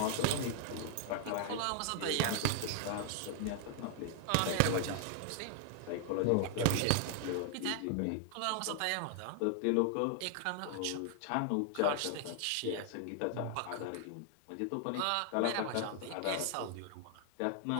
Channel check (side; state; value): both; different; correlation 0.00